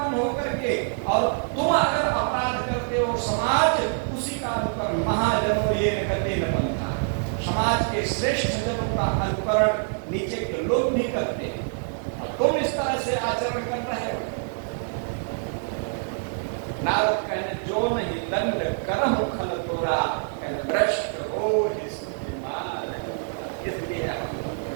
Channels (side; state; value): left; silent; digital silence